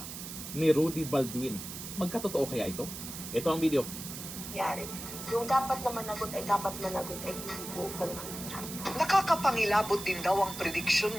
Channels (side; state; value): right; noise; hiss, 9 dB below the sound